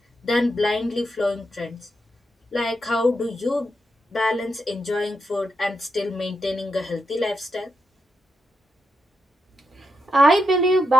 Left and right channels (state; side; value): normal; both; correlation 0.84